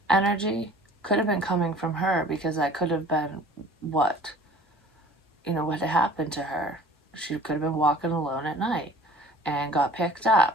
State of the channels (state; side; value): normal; both; correlation 0.48